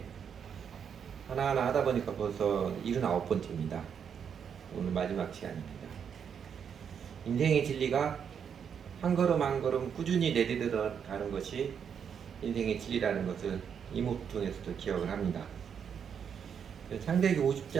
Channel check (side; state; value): left; quieter; 7.5 dB